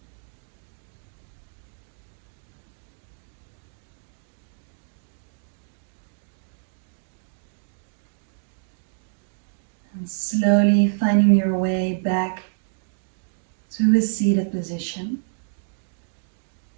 And slowly finding your way back to a seated position.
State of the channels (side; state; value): left; silent; digital silence